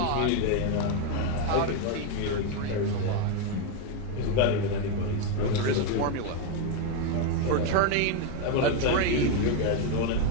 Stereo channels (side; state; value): both; different; correlation 0.02